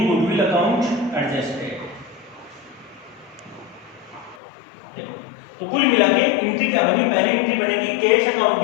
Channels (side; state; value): right; drops out; at 4.4 s